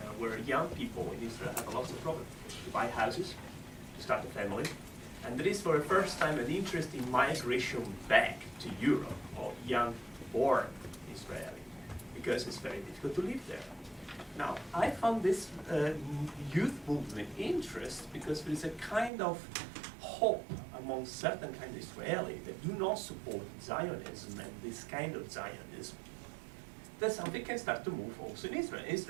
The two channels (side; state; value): left; drops out; at 19.1 s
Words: where young people in Israel have lots of problems to buy houses, to start a family. And there is for the first time an interest in migration back to Europe of young born Israeli, because it's very difficult to live there. Now, I found this youth movement interest because there is a kind of hope among certain kind of Israeli that do not support Zionism and this kind of Zionism. that something can start to move also in Israel.